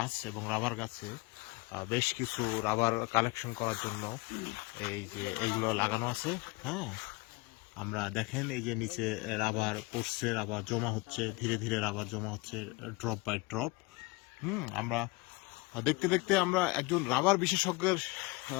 এবং রাবার গাছে বেশ কিছু রাবার কালেকশন করার জন্য এই যে এইগুলো লাগানো আছে। হ্যাঁ, আমরা দেখেন এই যে নিচে রাবার পড়ছে, রাবার জমা হচ্ছে, ধীরে ধীরে রাবার জমা হচ্ছে ড্রপ বাই ড্রপ। আমরা দেখতে দেখতে আমরা একজন রাবার বিশেষজ্ঞের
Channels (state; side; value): quieter; right; 24.1 dB